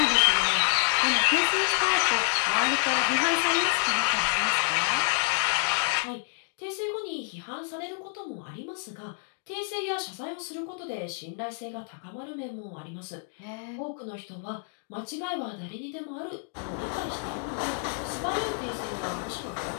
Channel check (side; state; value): right; silent; 59 dB below the other